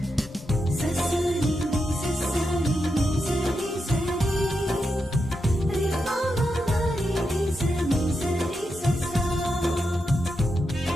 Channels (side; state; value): both; normal; correlation 0.86